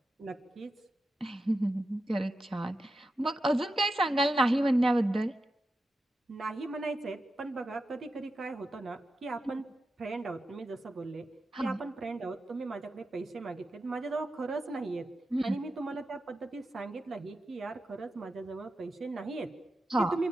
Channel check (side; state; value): both; normal; correlation 0.90